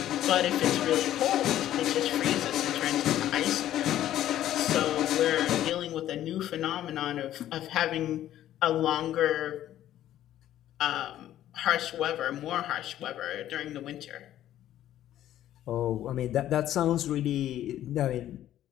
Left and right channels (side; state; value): right; quieter; 12.4 dB